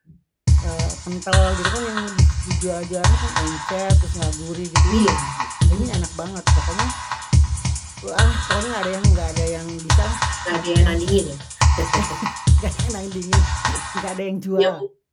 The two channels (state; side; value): identical; both; correlation 1.00